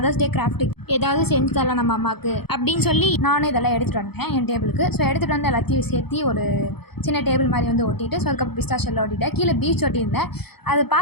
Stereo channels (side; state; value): right; late; 0.97 ms